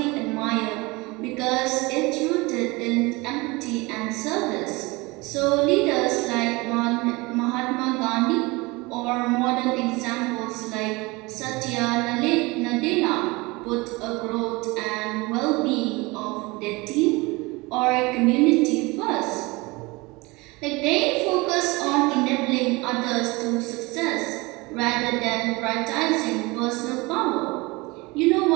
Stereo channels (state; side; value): quieter; left; 24.0 dB